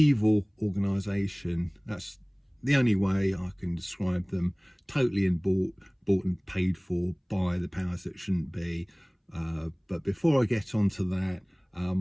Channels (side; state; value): both; identical; correlation 1.00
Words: organisation. That's the only way I can describe them. Totally bought and paid for by the powers that shouldn't be. But before I get onto that,